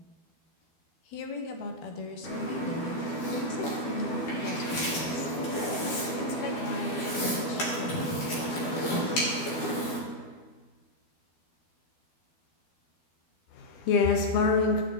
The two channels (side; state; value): right; late; 12 ms